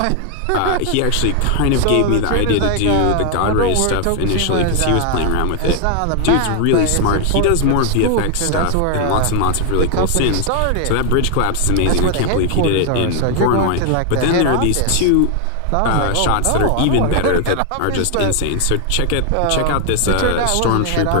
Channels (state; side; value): different; both; correlation 0.00